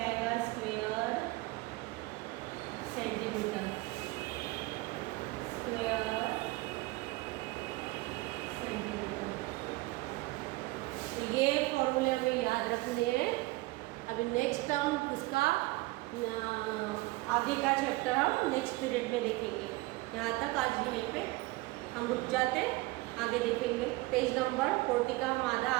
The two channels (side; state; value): left; quieter; 21.6 dB